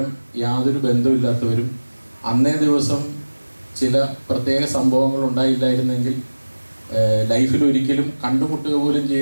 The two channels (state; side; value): inverted; both; correlation -1.00